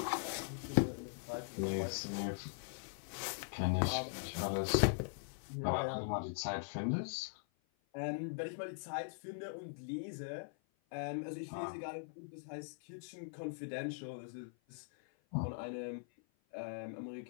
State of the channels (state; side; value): silent; right; 50 dB below the other